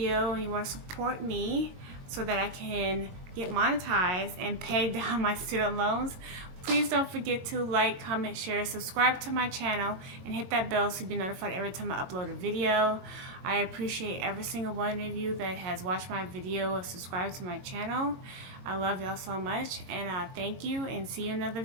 and you want to support me so that I can get monetized and pay down my student loans, please don't forget to like, comment, share, subscribe to my channel, and hit that bell so you'll be notified every time I upload a video. I appreciate every single one of you that has watched my video or subscribed to my channel. I love y'all so much, and thank you, and see you in another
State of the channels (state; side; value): late; left; 22 ms